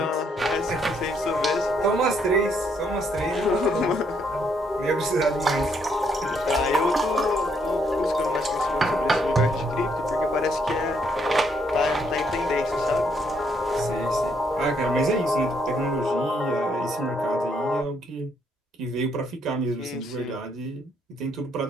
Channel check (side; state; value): both; normal; correlation 0.72